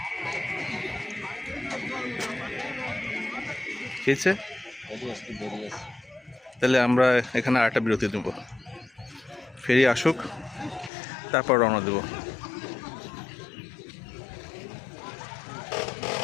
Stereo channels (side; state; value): right; drops out; at 10.9 s